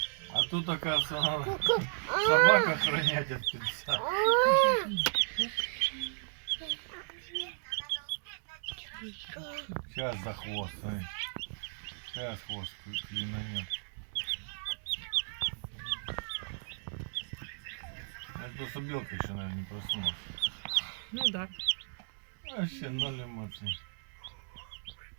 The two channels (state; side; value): silent; left; digital silence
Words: тут оказывается, надо собак охранять от птенца. Сейчас за хвост, смотри. Сейчас хвост клинанет. Это просто белка еще, наверное, не проснулась. Ну да. Вообще ноль эмоций.